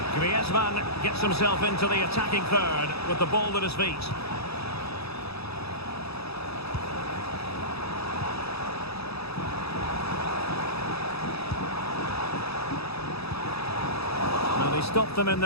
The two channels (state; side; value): late; right; 0.78 ms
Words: man gets himself into the attacking third with the ball at his feet. Now they stopped them in